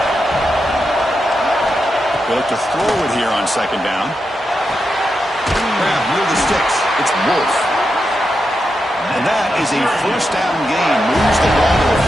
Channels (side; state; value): both; normal; correlation 0.87